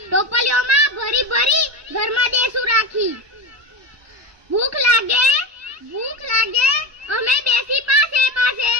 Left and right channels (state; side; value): late; left; 1.2 ms